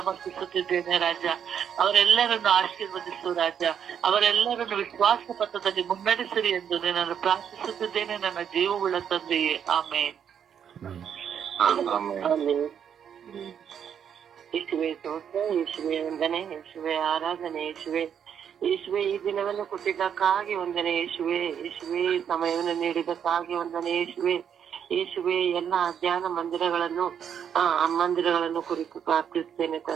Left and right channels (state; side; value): quieter; left; 8.3 dB